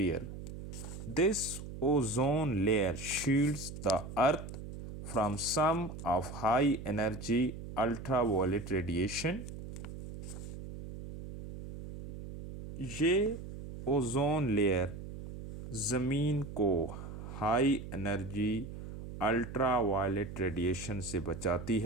This ozone layer shields the earth from some of high energy ultraviolet radiation. ये ओजोन लेयर ज़मीन को हाई एनर्जी अल्ट्रावायलेट रेडिएशन से बचाती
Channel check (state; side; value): noise; right; hum, 10 dB below the sound